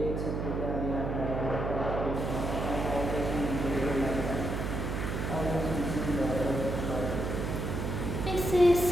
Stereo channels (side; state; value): right; noise; hum, 2 dB below the sound